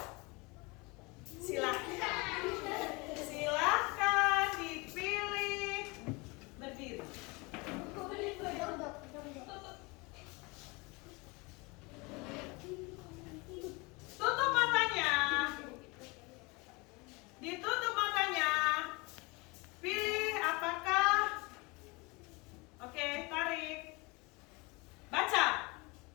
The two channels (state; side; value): quieter; right; 26.6 dB